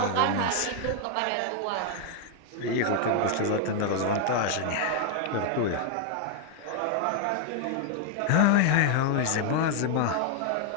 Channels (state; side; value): different; both; correlation 0.00